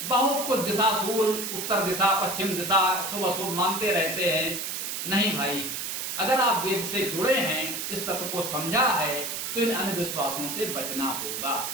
बहुत कुछ दिशा सूल, उत्तर दिशा, पश्चिम दिशा, शुभ अशुभ मानते रहते हैं। नहीं भाई, अगर आप वेद से जुड़े हैं, इस तत्व को समझा है, तो इन अंधविश्वासों से बचना होगा।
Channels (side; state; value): right; noise; hiss, 4 dB below the sound